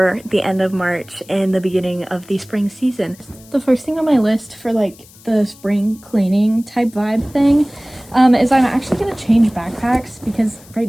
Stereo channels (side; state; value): left; noise; hiss, 24 dB below the sound